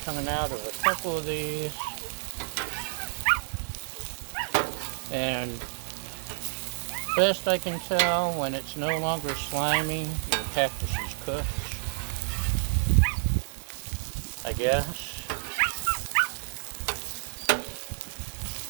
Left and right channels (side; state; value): left; silent; 56 dB below the other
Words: coming out of a couple of these. And best I can tell, when it's no longer slimy, your cactus is cooked, I guess.